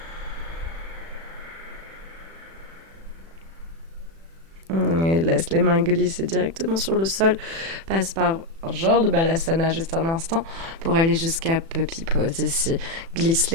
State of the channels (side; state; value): left; late; 36 ms